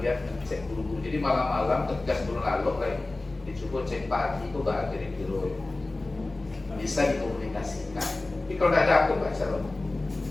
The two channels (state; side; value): quieter; right; 3.0 dB